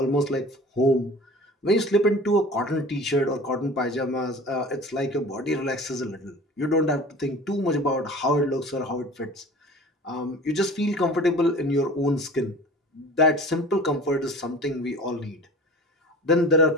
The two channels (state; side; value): normal; both; correlation 0.41